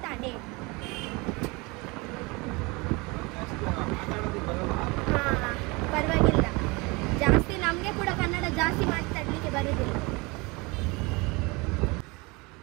ಅಂಡೆ ಹಾಂ ಪರವಾಗಿಲ್ಲ ಜಾಸ್ತಿ ನಮಗೆ ಕೂಡ ಕನ್ನಡ ಜಾಸ್ತಿ ಮಾತಾಡಲಿಕ್ಕೆ ಬರುವುದಿಲ್ಲ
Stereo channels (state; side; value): quieter; left; 26.1 dB